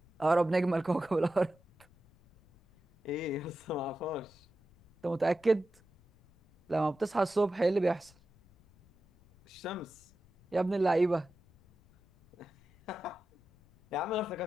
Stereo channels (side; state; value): left; noise; rumble, 29 dB below the sound